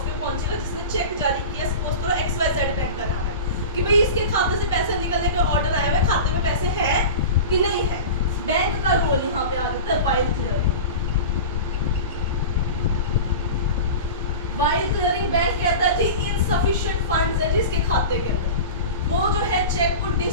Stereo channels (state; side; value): inverted; both; correlation -0.31